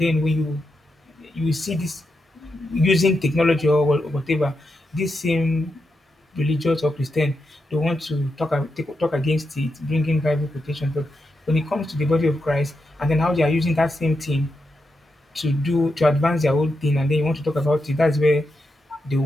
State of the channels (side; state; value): both; normal; correlation 0.86